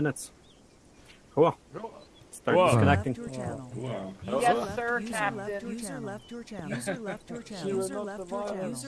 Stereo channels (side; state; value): both; identical; correlation 1.00